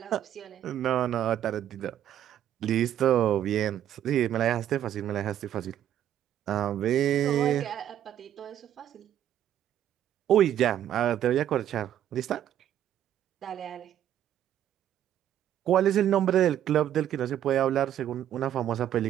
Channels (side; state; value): left; quieter; 10.9 dB